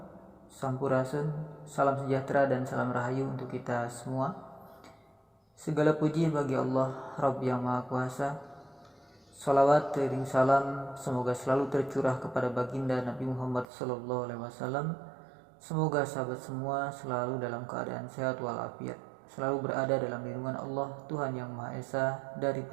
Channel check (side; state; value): left; drops out; at 13.7 s